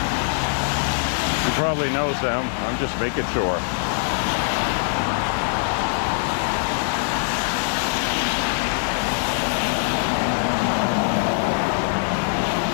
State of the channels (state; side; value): silent; right; digital silence